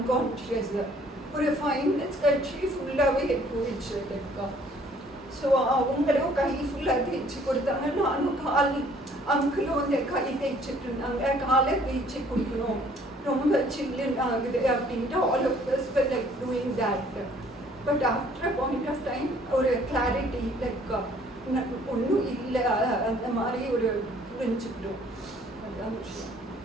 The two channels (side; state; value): both; normal; correlation 0.59